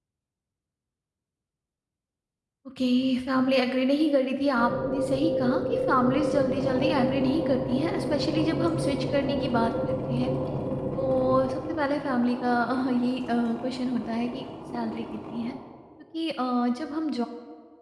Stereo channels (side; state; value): both; identical; correlation 1.00